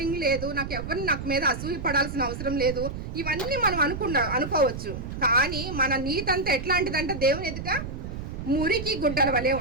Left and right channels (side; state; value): right; noise; rumble, 7 dB below the sound